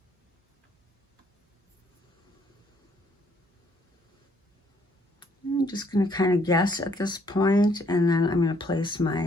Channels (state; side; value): normal; both; correlation 0.66